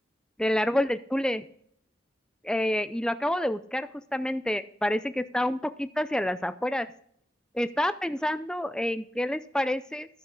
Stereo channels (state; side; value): normal; both; correlation 0.92